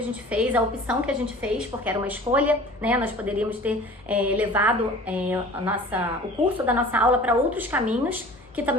gente fez, a opção que a gente fez, porque era uma escolha, né? Nós poderíamos ter levado o curso da nossa aula para outros caminhos que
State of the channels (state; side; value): normal; both; correlation 0.44